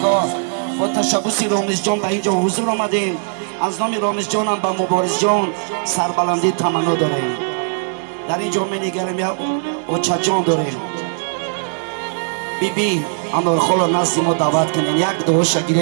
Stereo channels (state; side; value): silent; left; digital silence